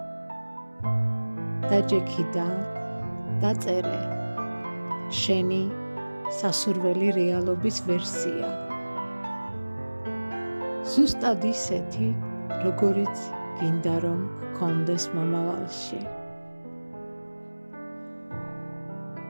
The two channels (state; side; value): inverted; both; correlation -1.00